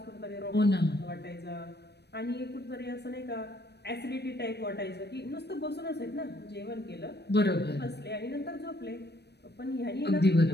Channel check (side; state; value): right; late; 0.48 ms